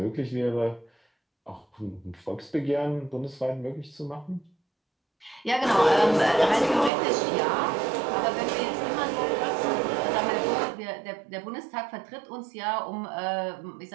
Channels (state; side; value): drops out; left; at 6.9 s